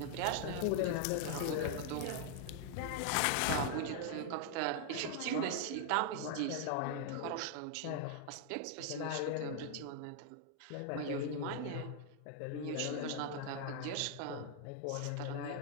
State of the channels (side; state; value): both; different; correlation 0.00